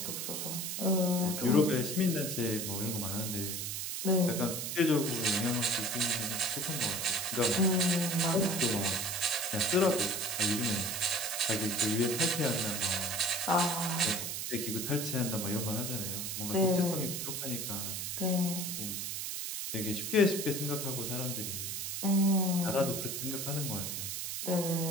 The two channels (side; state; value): right; noise; hiss, 3 dB below the sound